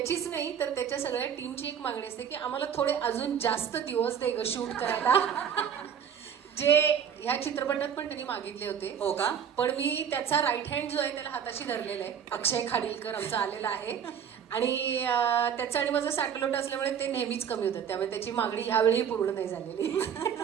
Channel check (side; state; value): left; quieter; 8.1 dB